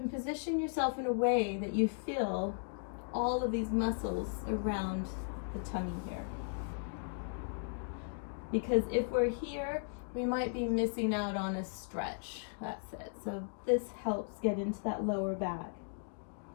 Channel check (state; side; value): silent; right; digital silence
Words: position yourself in a way that you feel all of these muscles around the tummy here. Because if we're here, we might be missing out on a stretch. That's it. So this helps get into that lower back.